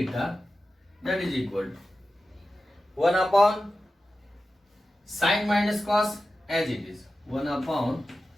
that is equal to 1 upon sin minus cos as it is, 1 upon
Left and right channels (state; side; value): normal; both; correlation 0.93